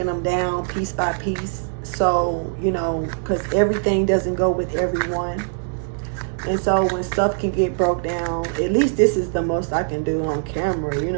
them down piece by piece. So, because everything doesn't go with everyone. And so when stuff can get broke down, at least this is the most I can do on camera. You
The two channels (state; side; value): silent; left; digital silence